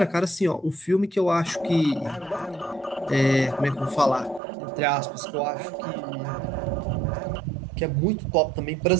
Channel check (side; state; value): left; drops out; at 4.4 s